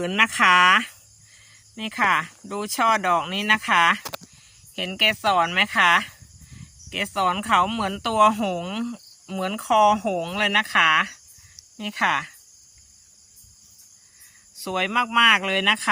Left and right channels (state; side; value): identical; both; correlation 1.00